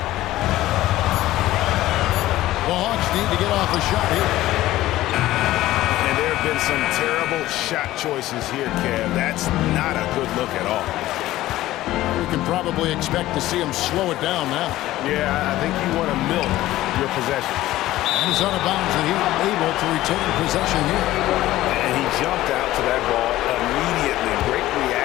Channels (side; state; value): right; quieter; 15.7 dB